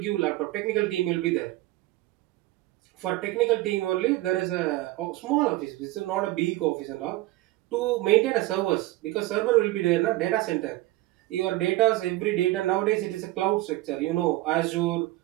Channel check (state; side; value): quieter; left; 17.8 dB